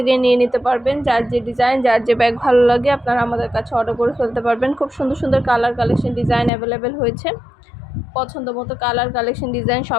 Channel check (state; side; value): drops out; right; at 6.5 s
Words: নিয়ে নিতে পারবেন। যার যে ডিজাইন, যার যে ব্যাগ ভালো লাগে আপনারা আমাদের কাছে অর্ডার করে ফেলতে পারবেন। খুব সুন্দর সুন্দর কালার কালেকশন ডিজাইন অ্যাভেলেবেল হয়েছে। পছন্দ মতো কালার কালেকশন ডিজাইন